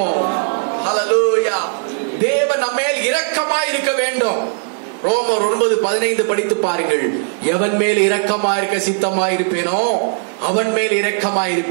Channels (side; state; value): left; silent; 61 dB below the other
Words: ஹல்லேலூயா. தேவன் நம்மேல் இரக்கமாய் இருக்க வேண்டும். ரோமர் 9:15 படித்து பாருங்கள். எவன் மேல் இரக்கமாய் இருக்க சித்தமாய் இருப்பேனோ அவன் மேல் இரக்கமாய்